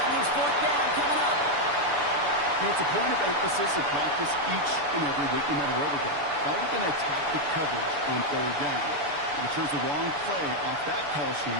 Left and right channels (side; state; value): left; late; 6.9 ms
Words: means 4th down coming up. You know, it's a point of emphasis in practice each and every week, no matter where we go. How are we going to attack the coverage on 3rd down? We chose the wrong play off that call